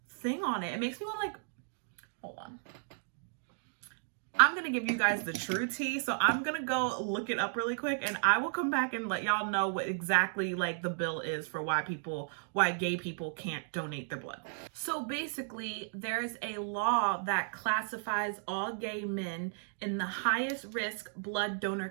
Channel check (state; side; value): silent; left; digital silence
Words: thing on it. It makes me want to like, hold on. I'm going to give you guys the true tea. So I'm going to go look it up really quick, and I will come back and let y'all know what exactly like the bill is for why gay people can't donate their blood. So basically, there's a law that classifies all gay men in the highest risk blood donor